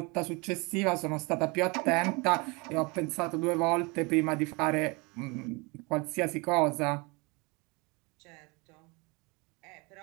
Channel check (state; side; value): quieter; left; 28.0 dB